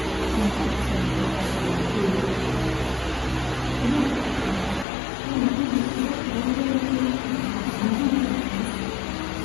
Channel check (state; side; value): drops out; right; at 4.9 s